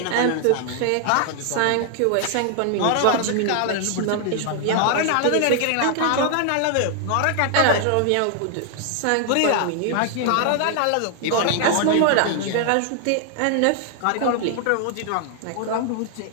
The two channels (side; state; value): both; different; correlation 0.00